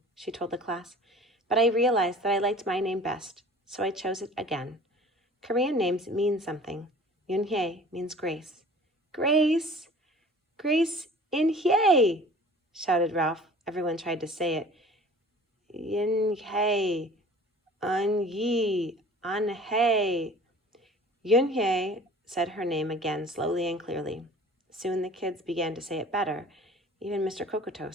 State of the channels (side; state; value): both; normal; correlation 0.46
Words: she told the class, "but I realized that I liked my name best, so I chose it again. Korean names mean something. Yunhye means grace." "Grace! Grace in Hye!" shouted Ralph. Everyone tried to say it. Yunhye, Un-yi, An-hye. Yunhye said her name again slowly and clearly. Soon the kids began to say it better, even Mr.